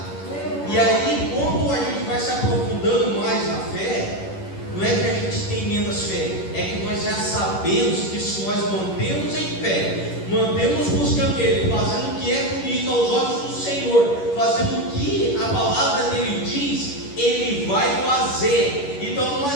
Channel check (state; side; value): late; right; 11 ms